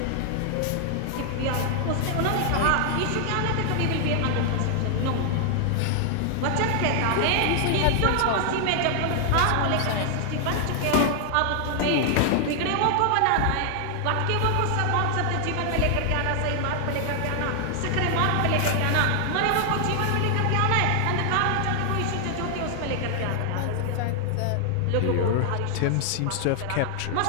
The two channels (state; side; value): different; both; correlation 0.00